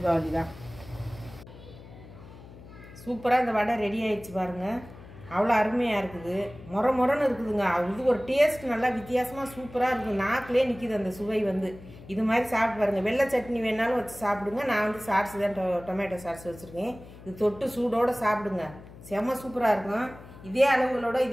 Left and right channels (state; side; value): noise; left; hum, 18 dB below the sound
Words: தான். சூப்பராக இந்த வடை ரெடி ஆகிடுச்சு பாருங்கள். அவ்வளோ அருமையாக இருக்குது. மொரன்னு இருக்குதுங்க. இது ஒரு டேஸ்ட் நல்லா வித்தியாசமாக சூப்பராக இருக்குது. நாக்கிலே நிற்கிது அந்த சுவை வந்து. இது மாதிரி சாப்பிட்டு பாருங்கள். வெள்ளை சட்னி வேணாலும் வச்சு சாப்பிடுங்க. நான் வந்து சாஸ் தான் டொமேட்டோ சாஸ் வச்சுருக்கேன். இது தொட்டு சூடோடு சாப்பிடுங்க. செம்ம சூப்பராக இருக்கும். இதே அளவுகளோட